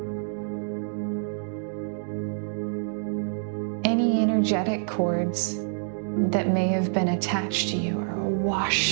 Any energetic cords that may have been attached to you are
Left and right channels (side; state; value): left; silent; digital silence